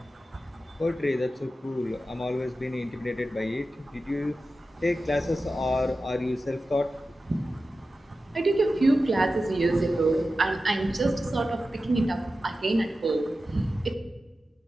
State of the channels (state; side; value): normal; both; correlation 0.93